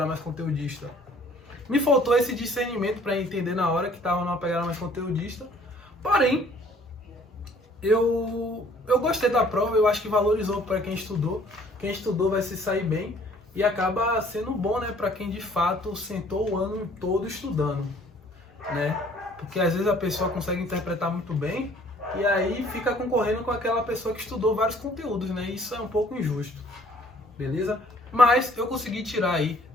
mais conteudista? Me faltou esse discernimento para entender na hora que tava numa pegada mais conteudista. Porém, eu gostei da prova, eu acho que valorizou para quem estudou. Quem estudou vai se sair bem e acaba sendo bom, né, para quem de fato sentou o ano todo estudando, né? Porque às vezes a pessoa consegue interpretar muito bem e aí fica concorrendo com aquela pessoa que estudou vários conteúdos, né? Isso é um pouco injusto, beleza? Mas eu consegui tirar aí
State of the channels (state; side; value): normal; both; correlation 0.57